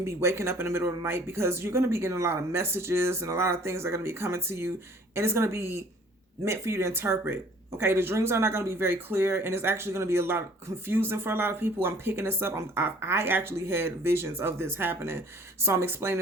be waking up in the middle of the night because you're going to be getting a lot of messages and a lot of things are going to be coming to you, and it's going to be meant for you to interpret. Okay, the dreams are not going to be very clear, and it's actually going to be a lot confusing for a lot of people. I'm picking this up. I actually had visions of this happening, so I'm explaining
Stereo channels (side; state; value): both; normal; correlation 0.53